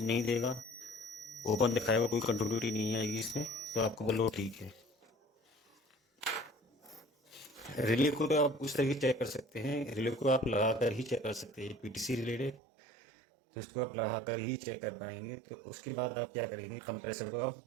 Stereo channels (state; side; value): drops out; left; at 12.6 s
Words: नहीं देगा, ओपन दिखाएगा, कोई कंटिन्यूटी नहीं आएगी इसमें, तो आपका ओवरलोड ठीक है। रिले को तो आप उस तरीके चेक कर सकते हैं, रिले को आप लगा कर ही चेक कर सकते हैं। पीटीसी रिले है तो इसको आप लगा कर ही चेक कर पाएंगे। तो उसके बाद आप क्या करेंगे, कंप्रेसर को आप